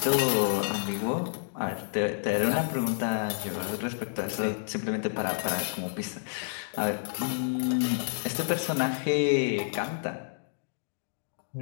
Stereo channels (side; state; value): right; silent; digital silence